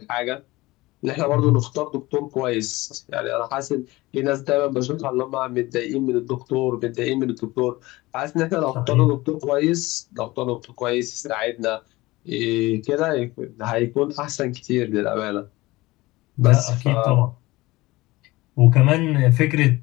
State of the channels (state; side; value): quieter; right; 20.2 dB